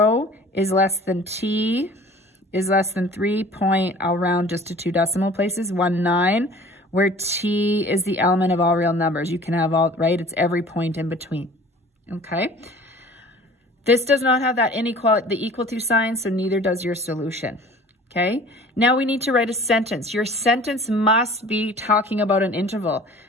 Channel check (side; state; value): both; normal; correlation 0.47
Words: is less than t is less than 3 point, I'll round just to 2 decimal places, 19, where t is the element of all real numbers. You can have all, right? It's every point in between, okay? This does not have that inequality, the equal to sign, so neither does your solution. Okay, now we need to write a sentence. Your sentence must be talking about an interval.